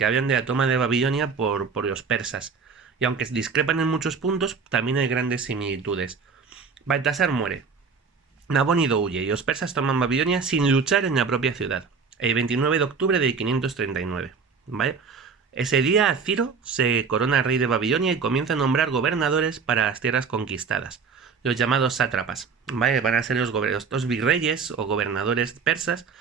hablan de la toma de Babilonia por los persas, y aunque discrepan en muchos puntos, también hay grandes similitudes. Baltasar muere, Nabónido huye y los persas toman Babilonia sin luchar en la propia ciudad, el 29 de octubre de 539, ¿vale? Ese día Ciro se corona rey de Babilonia y comienza a nombrar gobernadores para las tierras conquistadas, los llamados sátrapas, ¿vale? Van a ser los virreyes o gobernadores persas,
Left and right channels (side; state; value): left; quieter; 5.5 dB